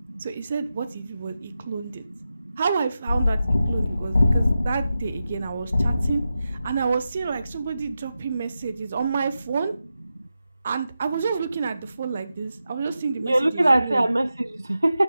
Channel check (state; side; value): inverted; both; correlation -0.91